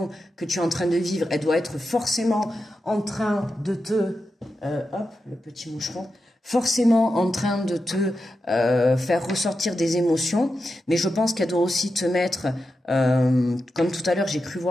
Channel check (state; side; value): normal; both; correlation 0.89